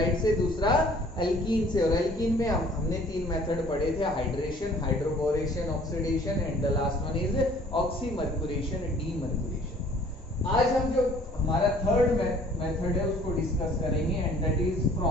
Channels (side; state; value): both; normal; correlation 0.54